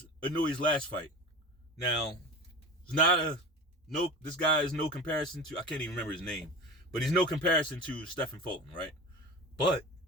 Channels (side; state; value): both; normal; correlation 0.32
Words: Inoue's last fight? Now, this guy is no comparison to, I can't even remember his name, but he's no comparison to Stephen Fulton, right? But